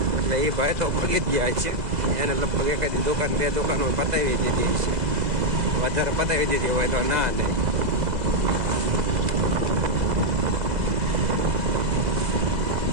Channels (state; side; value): late; left; 2.0 ms